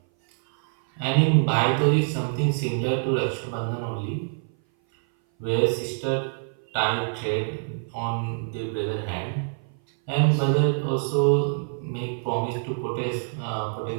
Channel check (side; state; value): left; silent; 58 dB below the other